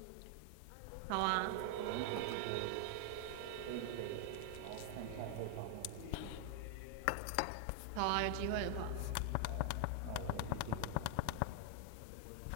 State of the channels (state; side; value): different; both; correlation 0.00